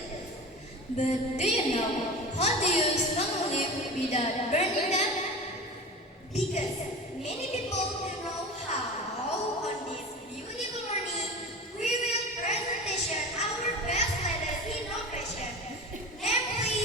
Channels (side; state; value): both; normal; correlation 0.32